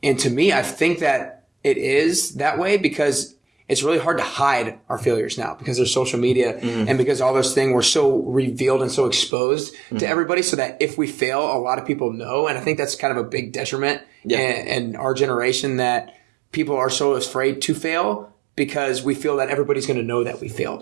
And to me, I think that it is that way because it's really hard to hide our failures now because there's social media and because all those things were so revealed and so exposed to everybody so that if we fail, a lot of people know. And I think that's kind of a big detriment in our generation that people are so afraid to fail because we feel that everybody's going to know that we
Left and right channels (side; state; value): left; drops out; at 9.3 s